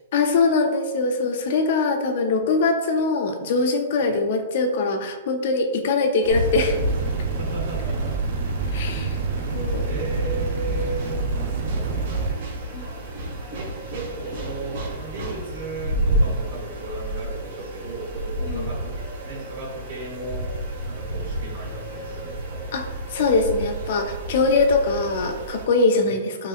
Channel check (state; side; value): inverted; both; correlation -0.37